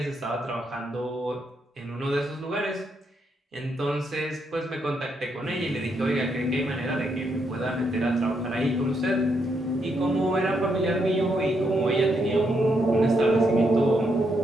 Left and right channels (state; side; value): normal; both; correlation 0.78